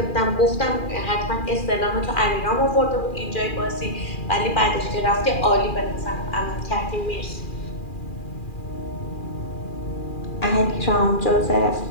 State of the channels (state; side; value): late; right; 2.4 ms